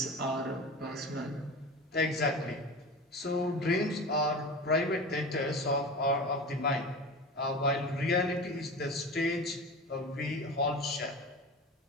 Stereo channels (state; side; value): normal; both; correlation 0.31